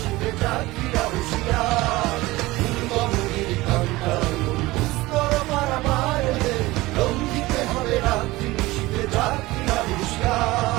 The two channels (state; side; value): quieter; left; 19.7 dB